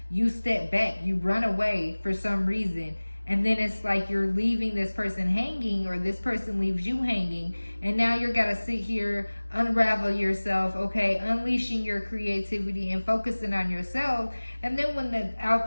You step back, you run away for some reason, and then it's like you're leaving this person hanging, or this person leaves you hanging, and now you're gotta sit here, unravel yourself, okay, unleashing your creativity and focusing on yourself. And then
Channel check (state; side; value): inverted; both; correlation -1.00